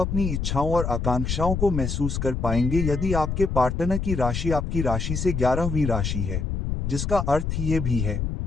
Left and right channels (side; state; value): left; noise; rumble, 2 dB below the sound